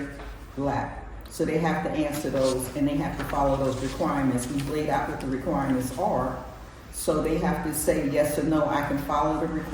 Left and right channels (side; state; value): both; identical; correlation 1.00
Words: lap. So they have to answer those, and they have to follow those requirements. We've laid out what the requirements are, so they have to say yes or no, I can follow the